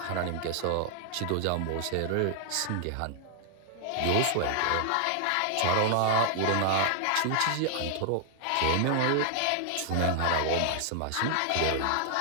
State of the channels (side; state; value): both; different; correlation 0.00